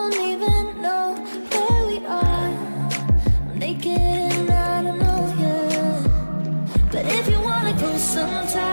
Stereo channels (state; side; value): inverted; both; correlation -1.00